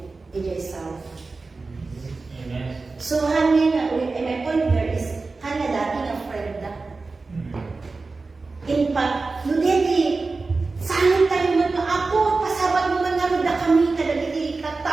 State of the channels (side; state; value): left; quieter; 3.8 dB